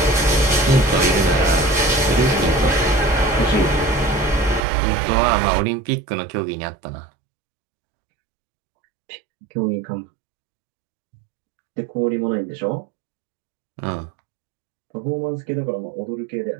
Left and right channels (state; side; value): drops out; left; at 4.6 s